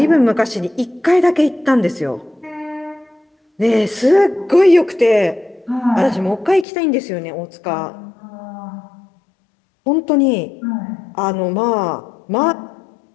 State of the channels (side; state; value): right; drops out; at 6.7 s